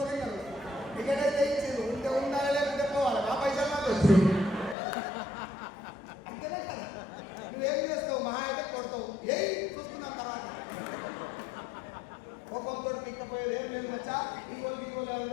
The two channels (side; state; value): right; drops out; at 4.8 s